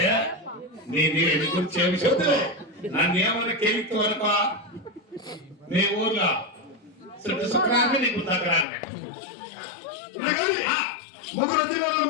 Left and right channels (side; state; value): right; drops out; at 8.7 s